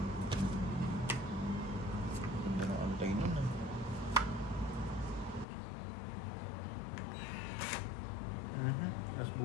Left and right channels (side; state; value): right; drops out; at 5.5 s